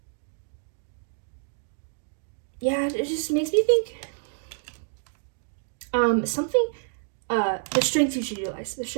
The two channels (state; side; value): silent; left; digital silence